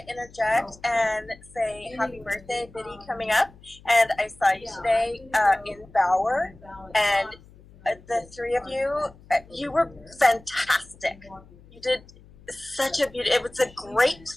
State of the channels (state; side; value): noise; left; hum, 24 dB below the sound